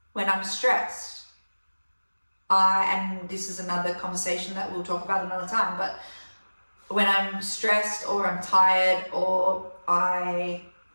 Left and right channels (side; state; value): both; inverted; correlation -1.00